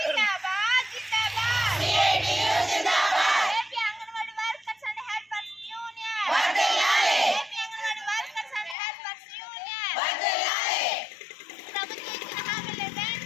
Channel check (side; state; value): right; drops out; at 8.8 s